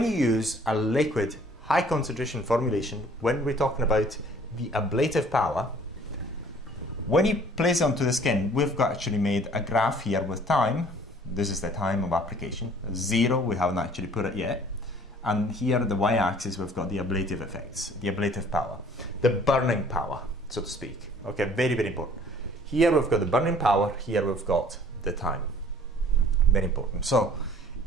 you use a liquid high concentration formulation, when we're talking about the ablative power, when you place it onto the skin, we've actually made a graph here with time. This is the time of application. 0, we haven't actually put it yet. And here the y-axis, we've got the ablative effects, the ablative power, the burning power, so to speak. Okay, very, very important. Here we've got the burning power, here we've got the time. Very important. So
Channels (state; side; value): normal; both; correlation 0.54